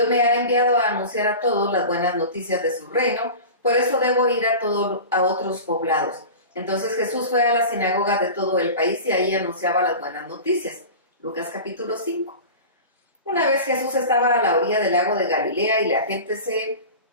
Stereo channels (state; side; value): inverted; both; correlation -0.33